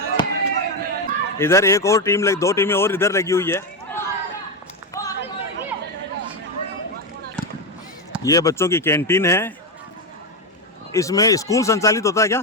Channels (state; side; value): normal; both; correlation 0.10